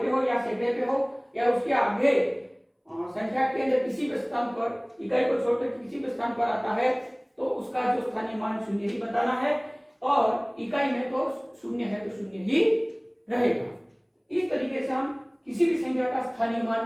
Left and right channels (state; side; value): identical; both; correlation 1.00